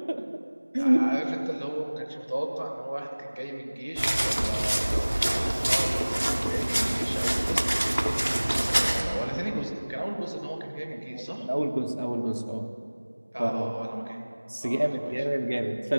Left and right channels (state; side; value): inverted; both; correlation -1.00